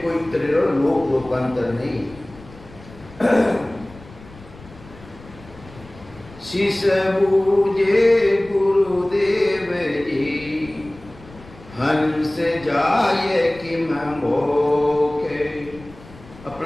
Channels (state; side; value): noise; left; rumble, 20 dB below the sound